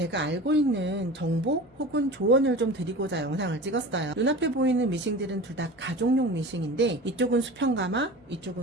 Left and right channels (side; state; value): both; normal; correlation 0.35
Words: 알고 있는 정보 혹은 조언을 좀 드리고자 영상을 찍었어요. 눈앞에 보이는 미싱들은 둘 다 가족용 미싱인데 이쪽은 수평가마,